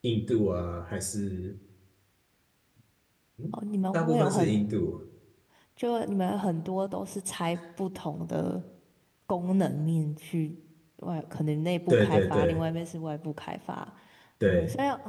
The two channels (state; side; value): identical; both; correlation 1.00